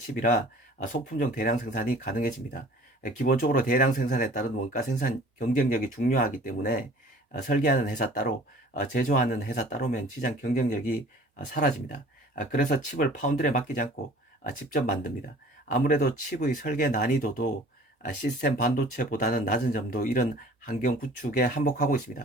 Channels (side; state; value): both; normal; correlation 0.49